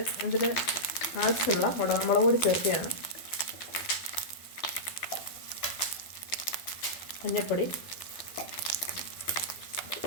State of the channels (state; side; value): late; right; 12 ms